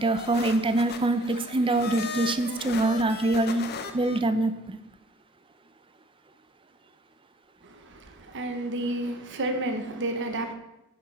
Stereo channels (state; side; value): normal; both; correlation 0.56